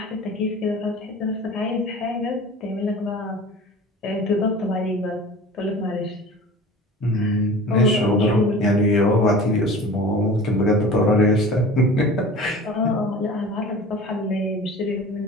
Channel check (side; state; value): both; normal; correlation 0.39